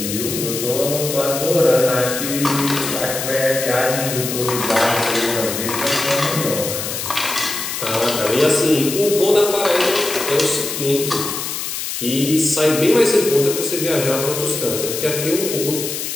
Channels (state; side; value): noise; left; hiss, 5 dB below the sound